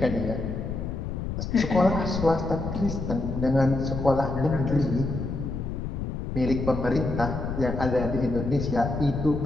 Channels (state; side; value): noise; left; rumble, 4 dB below the sound